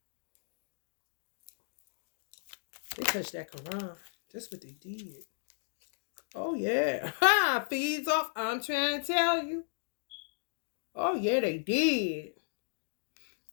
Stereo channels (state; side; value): silent; right; digital silence